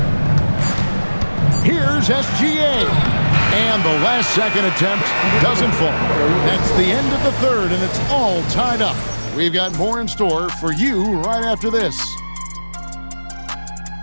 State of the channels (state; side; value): inverted; both; correlation -1.00